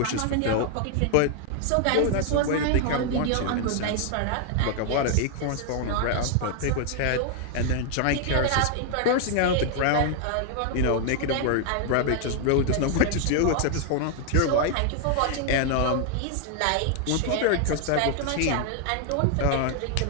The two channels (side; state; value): both; different; correlation 0.00